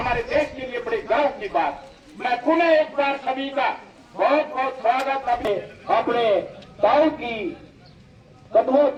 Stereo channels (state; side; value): identical; both; correlation 1.00